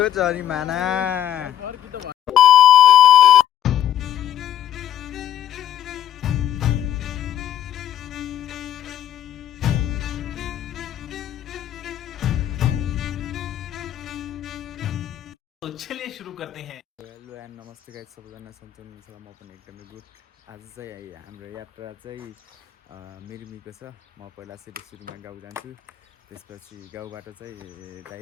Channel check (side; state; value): right; quieter; 11.1 dB